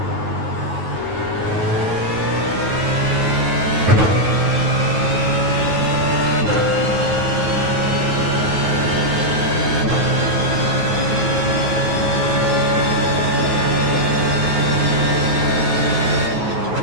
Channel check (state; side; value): late; left; 9.4 ms